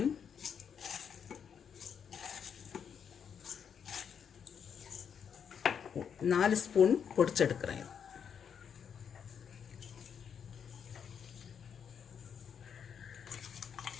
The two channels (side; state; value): right; quieter; 7.5 dB